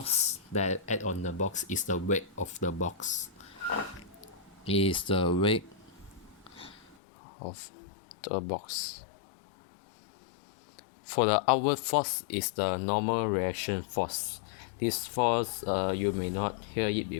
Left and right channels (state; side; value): drops out; right; at 7.0 s